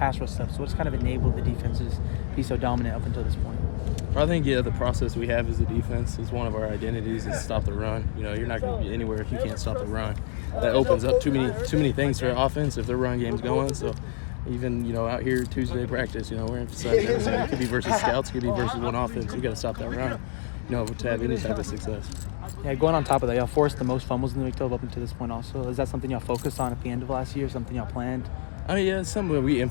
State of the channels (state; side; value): silent; right; digital silence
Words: rush stuff. So what's kind of enabled the defenses to be so dominant up until this point? I think, the process we have as the defense is one of our identities is stop the run. You're not going to be anywhere if you can't stop the run. That opens up too many things for offense if their run game's going. So even, out here Tuesday practice, we're emphasizing everything. It could be versus scouts, it could be versus one offense. We got to stop that run, to have any type of success. Yeah, going on top of that, y'all forced the most fumbles in the Big 12 up until this point also. Is that something y'all focused on at the end of last year, something y'all planned? I mean, yeah, it's something that we